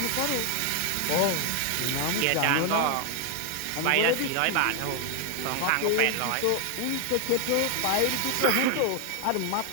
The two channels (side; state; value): both; different; correlation 0.01